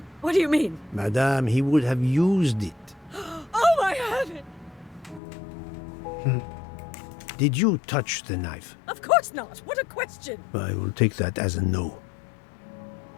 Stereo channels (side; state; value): right; drops out; at 5.2 s